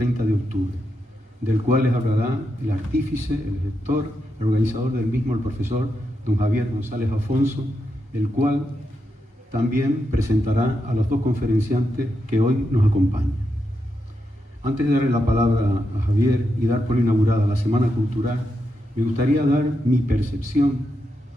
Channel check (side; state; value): both; normal; correlation 0.85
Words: de octubre, del cual les hablará el artífice, el gestor, el organizador del mismo, el profesor don Javier González Afonso, el cual también presentará a los dos conferenciantes que hoy nos acompañan. Antes de darle la palabra a Javier y dar por inaugurada la Semana Cultural, me gustaría dar mi percepción